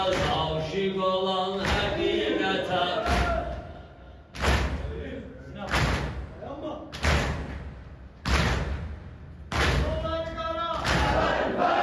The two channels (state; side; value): identical; both; correlation 1.00